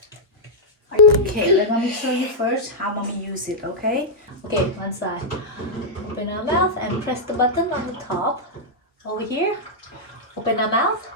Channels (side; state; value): both; normal; correlation -0.07